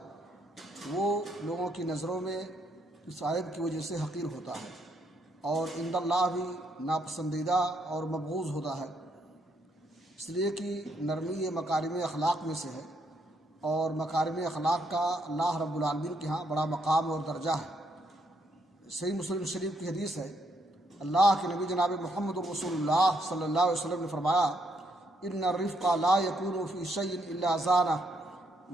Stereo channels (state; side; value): normal; both; correlation 0.74